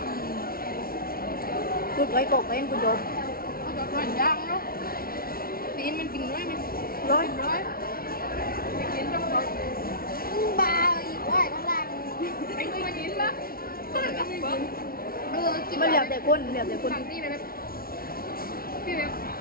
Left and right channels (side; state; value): right; late; 0.43 ms